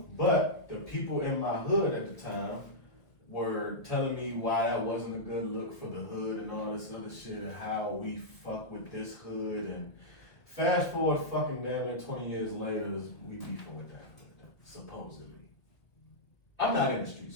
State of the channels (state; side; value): late; right; 1.6 ms